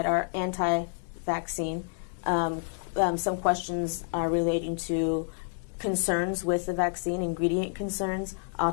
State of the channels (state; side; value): silent; right; digital silence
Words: are anti-vaccine. Some questions are relating to concerns with the vaccine, ingredient concerns,